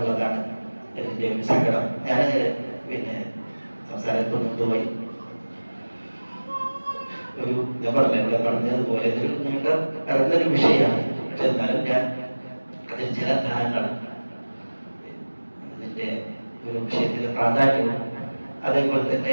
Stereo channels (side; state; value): both; inverted; correlation -1.00